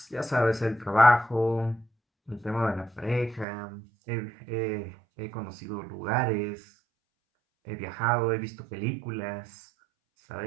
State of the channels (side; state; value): left; drops out; at 3.5 s